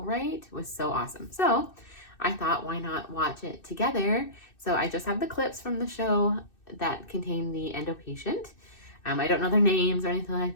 right, was so awesome. So I thought, why not watch it together? So I just have the clips from the show that contain the endo patient. I don't know their names or anything like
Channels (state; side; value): late; right; 2.6 ms